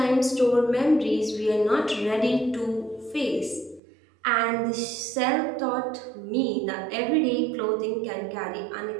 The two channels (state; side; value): drops out; left; at 3.8 s